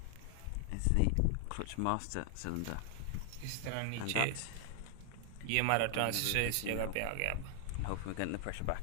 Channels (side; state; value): both; different; correlation 0.00